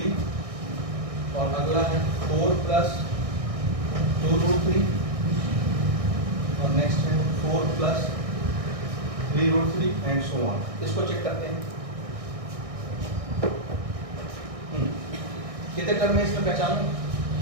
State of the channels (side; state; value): left; late; 1.6 ms